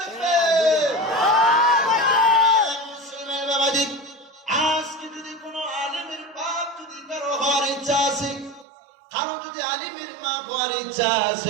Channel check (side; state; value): left; drops out; at 8.7 s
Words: মুসলমান বাবাজি, আজকে যদি কোনো আলিমের বাপ যদি কারো হওয়ার ইচ্ছা আছে, কারো যদি আলিমের মা হওয়ার ইচ্ছা